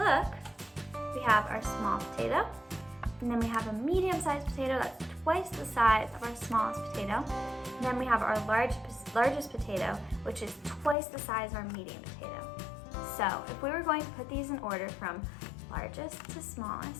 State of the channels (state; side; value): drops out; right; at 11.0 s